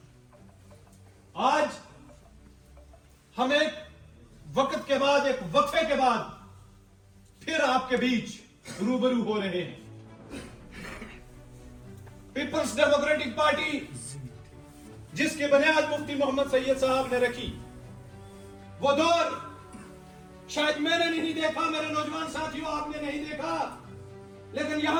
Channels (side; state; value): both; identical; correlation 1.00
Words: आज हम एक वक्त के बाद, एक वक्फे के बाद फिर आपके बीच रूबरू हो रहे हैं। पीपल्स डेमोक्रेटिक पार्टी जिसकी बुनियाद मुफ्ती मोहम्मद सैयद साहब ने रखी, वो दौर शायद मैंने नहीं देखा, मेरे नौजवान साथियों आपने नहीं देखा, लेकिन